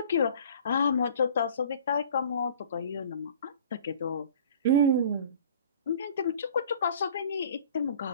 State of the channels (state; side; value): inverted; both; correlation -0.47